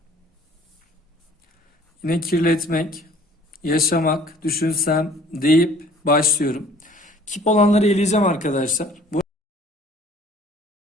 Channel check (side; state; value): both; normal; correlation 0.53